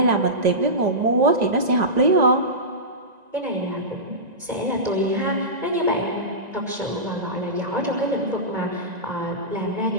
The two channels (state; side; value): late; left; 1.9 ms